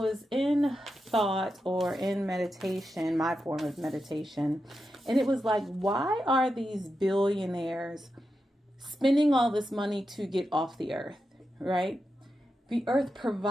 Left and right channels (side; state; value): both; normal; correlation 0.89